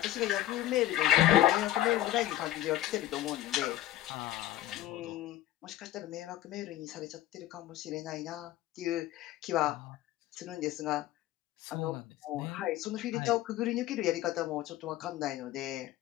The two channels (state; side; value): quieter; right; 14.1 dB